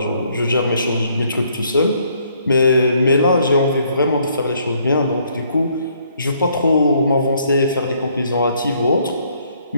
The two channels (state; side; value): inverted; both; correlation -0.67